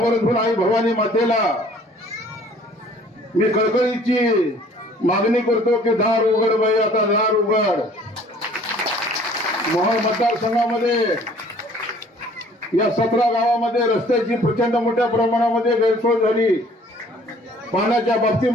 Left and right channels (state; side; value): normal; both; correlation 0.55